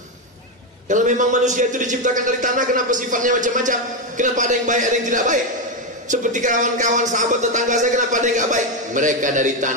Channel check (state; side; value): normal; both; correlation 0.08